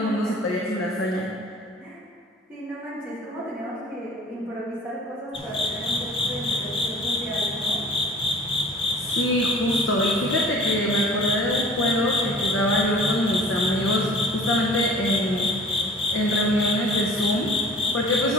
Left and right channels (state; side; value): normal; both; correlation 0.46